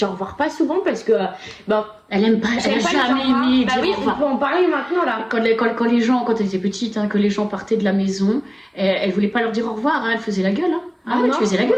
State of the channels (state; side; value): identical; both; correlation 1.00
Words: au revoir pas souvent parce que. Bon, Elle aime pas, elle a j'aime pas jamais les au revoir. aimé Bah dire oui, au on revoir. peut en parler maintenant là. Quand elle était petite, hein, que les gens partaient de la maison, elle voulait pas leur dire au revoir, hein, elle faisait la gueule. Hein. Ah ouais, non, tu faisais la